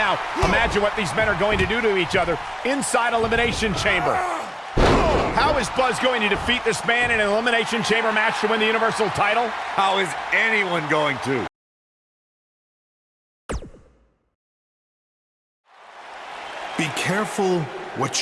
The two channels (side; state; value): both; identical; correlation 1.00